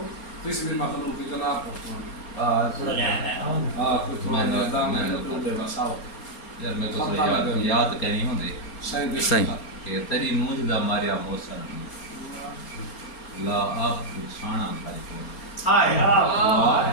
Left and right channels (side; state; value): right; late; 4.3 ms